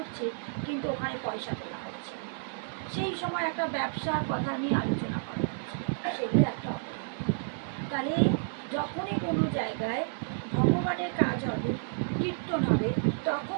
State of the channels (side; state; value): left; silent; digital silence